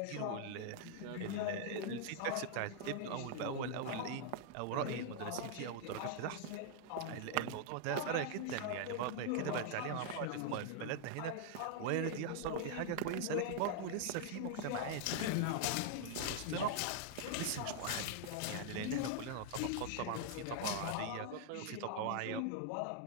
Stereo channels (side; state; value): both; different; correlation 0.00